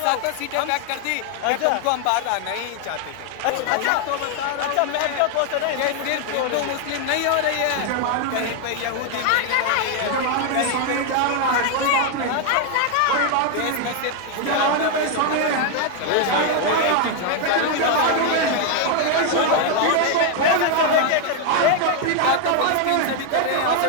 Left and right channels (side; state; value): both; different; correlation 0.00